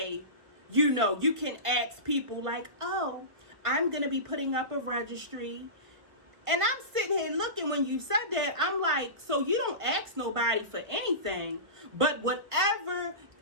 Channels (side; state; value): left; late; 1.4 ms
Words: You know, you can ask people like, oh, I'm going to be putting up a registry. And I'm sitting here looking when you said that. I'm like, so you don't ask nobody for anything, but whatever